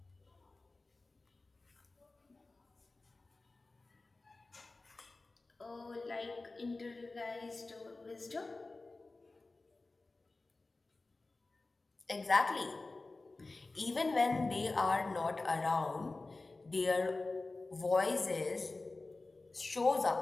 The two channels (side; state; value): right; quieter; 3.4 dB